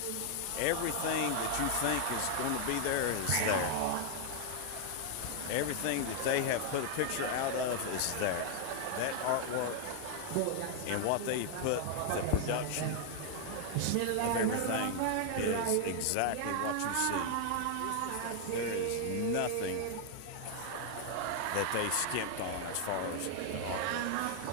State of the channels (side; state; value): both; different; correlation 0.00